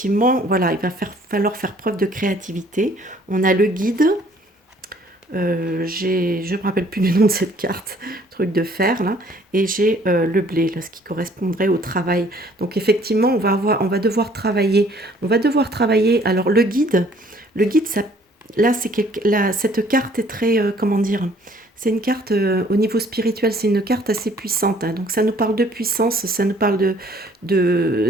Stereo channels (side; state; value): both; normal; correlation 0.59